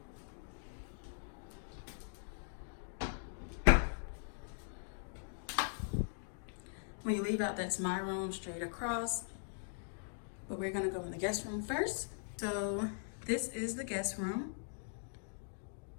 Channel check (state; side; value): silent; right; digital silence